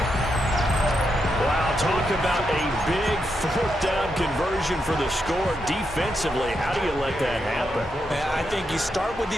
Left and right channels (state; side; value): normal; both; correlation 0.83